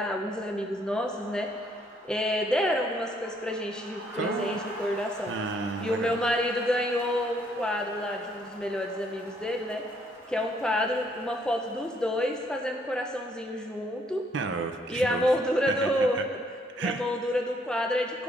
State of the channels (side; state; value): both; normal; correlation 0.68